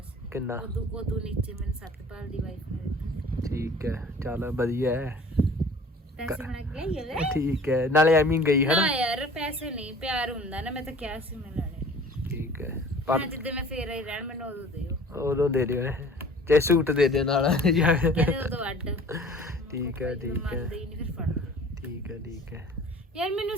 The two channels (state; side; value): normal; both; correlation 0.47